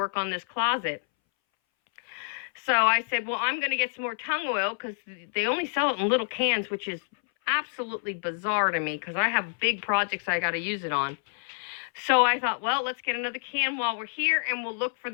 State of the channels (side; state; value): right; silent; 59 dB below the other